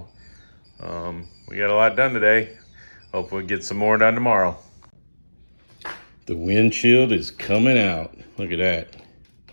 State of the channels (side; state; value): both; inverted; correlation -1.00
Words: we got a lot done today. Hopefully get some more done tomorrow. The windshield is coming out. Look at that.